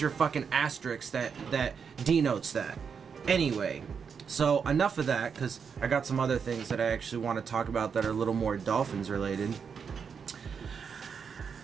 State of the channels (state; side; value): quieter; left; 6.4 dB